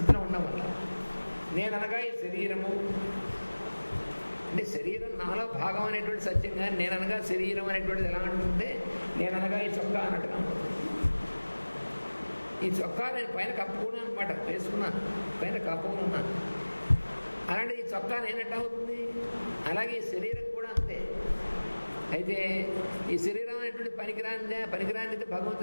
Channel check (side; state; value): both; inverted; correlation -1.00